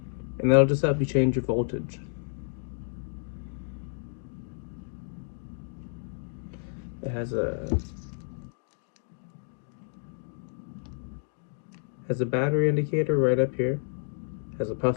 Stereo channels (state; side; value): silent; right; digital silence